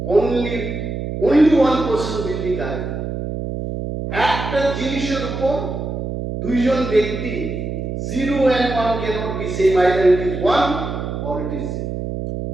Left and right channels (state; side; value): noise; right; hum, 5 dB below the sound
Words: only one person will be correct. একটা জিনিসের উপর দুইজন ব্যক্তি 0 and 1 cannot be same, either it is 1 or it is 0,